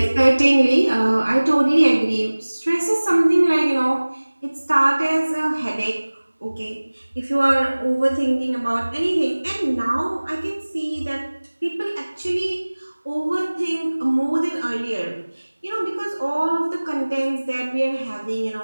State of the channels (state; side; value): inverted; both; correlation -1.00